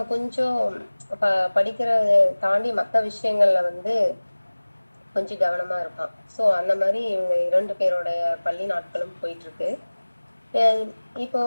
கொஞ்சம் படிக்கிறத தாண்டி மத்த விஷயங்கள்ல வந்து கொஞ்சம் கவனமா இருப்பான். சோ அந்த மாரி இவங்க 2 பேரோட பள்ளி நாட்களும் போயிட்டுருக்கு. அ இப்போ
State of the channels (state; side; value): inverted; both; correlation -1.00